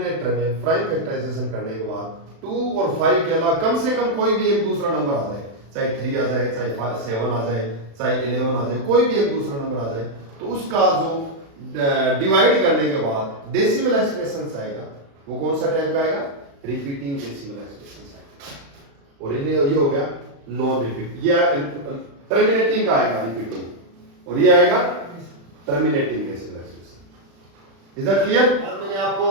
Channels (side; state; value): left; late; 36 ms